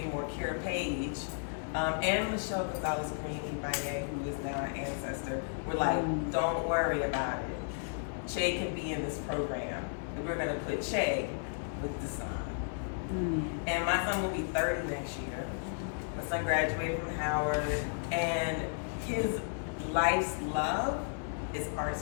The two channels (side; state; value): right; silent; 55 dB below the other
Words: Kara Page, and Michelle Gonzalez-Green, who is now an ancestor, were like, don't worry about it. Che can be in this program. And we're gonna put Che with Dasan. And my son will be 30 next year. My son graduated from Howard, and his life's love is